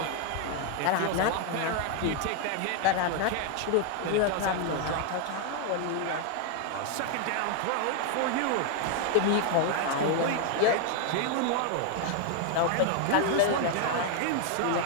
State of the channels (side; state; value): both; different; correlation 0.00